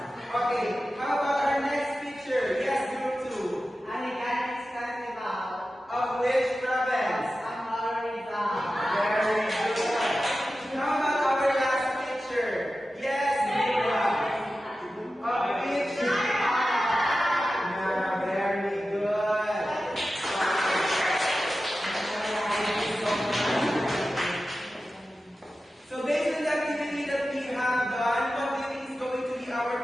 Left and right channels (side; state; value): both; normal; correlation 0.94